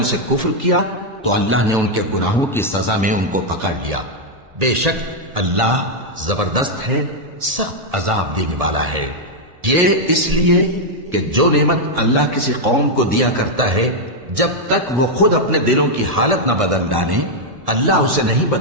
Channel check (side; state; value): left; late; 1.8 ms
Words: سے کفر کیا تو اللہ نے ان کے گناہوں کی سزا میں ان کو پکڑ لیا۔ بے شک اللہ زبردست ہے، سخت عذاب دینے والا ہے۔ یہ اس لیے کہ جو نعمت اللہ کسی قوم کو دیا کرتا ہے جب تک وہ خود اپنے دلوں کی حالت نہ بدل ڈالیں اللہ اسے نہیں